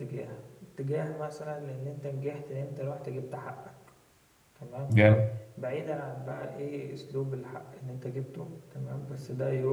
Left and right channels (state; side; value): identical; both; correlation 1.00